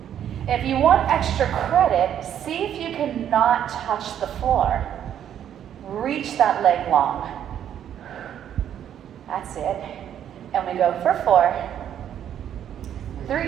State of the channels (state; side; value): quieter; left; 9.9 dB